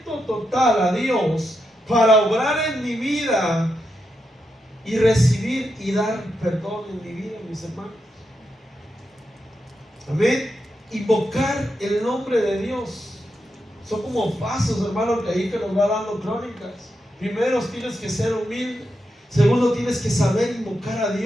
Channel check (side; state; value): both; normal; correlation 0.85